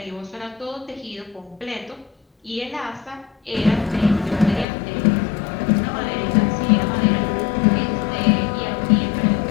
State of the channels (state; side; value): drops out; right; at 4.7 s